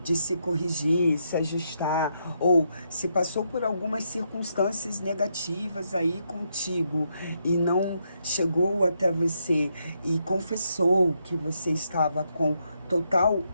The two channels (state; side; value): inverted; both; correlation -0.79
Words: de se corrigir, se ajustar, ou se passou por algumas circunstâncias negativas aí contigo e não chegou até você e confessou que você estava com total